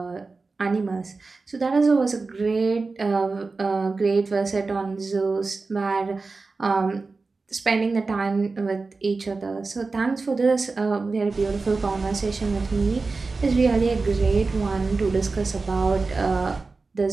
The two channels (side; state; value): left; quieter; 3.9 dB